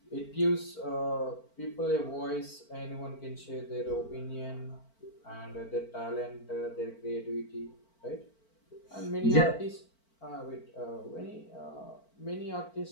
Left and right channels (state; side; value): late; right; 4.5 ms